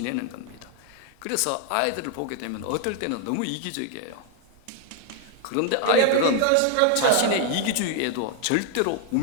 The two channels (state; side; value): different; both; correlation 0.00